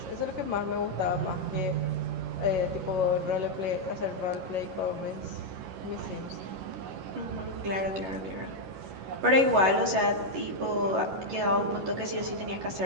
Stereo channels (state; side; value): late; left; 11 ms